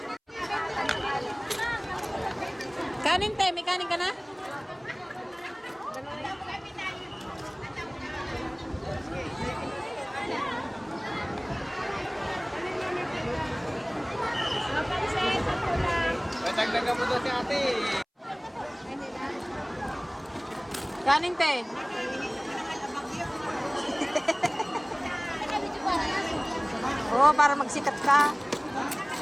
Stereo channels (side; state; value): both; identical; correlation 1.00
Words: Kanin, te. May kanin ka na? Dagdagan mo daw si ate. Kanin, te. Oo, para magsikat ka.